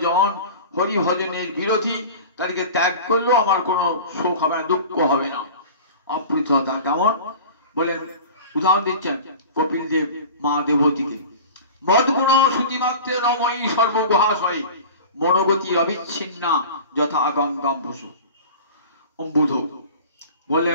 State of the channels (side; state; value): both; inverted; correlation -0.37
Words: হরি ভজনের বিরোধী, তাদেরকে ত্যাগ করলেও আমার কোনো শোক হবে না, দুঃখ হবে না। অপ্রতিহতা কেমন বলেন? উদাহরণ দিচ্ছেন কপিল দেব মা দেবতীকে, মদগুণ শ্রুতিমাত্রে নময়ী সর্বগুহাশয়, মনোগতি অবিচ্ছিন্না যথা গঙ্গাম বসু। অম্বুধ